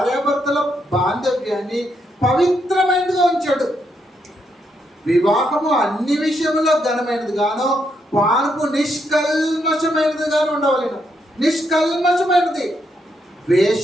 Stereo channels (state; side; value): normal; both; correlation 0.78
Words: బాంధవ్యాన్ని పవిత్రమైనదిగా ఉంచాడు. వివాహము అన్ని విషయంలో ఘనమైనది గాను, పానుపు నిష్కల్మషమైనది గాను ఉండవలెను. నిష్కల్మషమైనది.